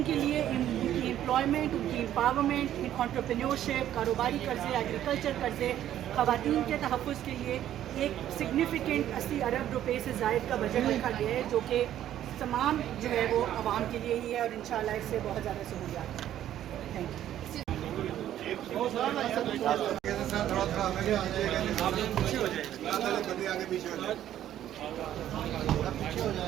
کے لیے ان کی امپلائمنٹ، ان کی امپاورمنٹ، انٹرپرینیورشپ، کاروباری قرضے، ایگریکلچر قرضے، خواتین کے تحفظ کے لیے ایک سگنیفیکنٹ 80 ارب روپے سے زائد کا بجٹ رکھا گیا ہے، جو کہ تمام جو ہے وہ عوام کے لیے ہی ہے اور انشاءاللہ اس سے بہت زیادہ سہولیات ہیں. Thank you.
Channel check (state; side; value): quieter; left; 11.7 dB